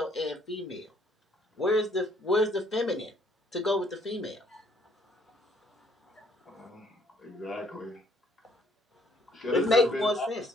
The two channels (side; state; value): both; normal; correlation 0.65